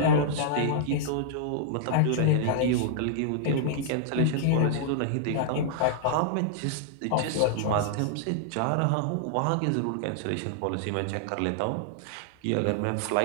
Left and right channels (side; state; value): both; different; correlation -0.01